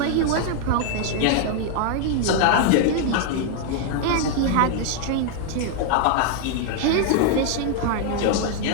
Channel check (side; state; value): both; different; correlation 0.00